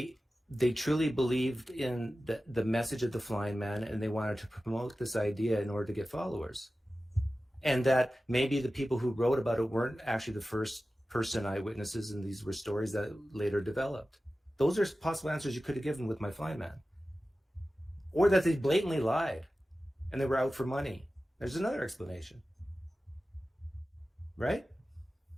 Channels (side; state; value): both; normal; correlation 0.95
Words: truly believed in the message of the flying man, and they wanted to promote this idea in order to get followers. And that maybe the people who wrote about it weren't actually the first person eyewitnesses, and these were stories that later developed. Those are possible answers you could have given with my flying man. Or that they blatantly lied and they were out for money. There's another explanation. Right?